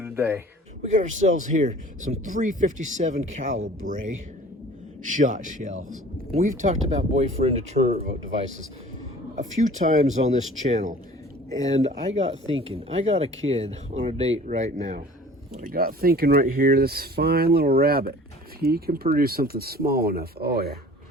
We got ourselves here some 357 caliber shot shells. We've talked about boyfriend deterrent devices a few times on this channel, and I got thinking, I got a kid on a date right now. I got thinking right here, this fine little rabbit, if he can produce something small enough, oh yeah,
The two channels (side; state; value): both; normal; correlation 0.46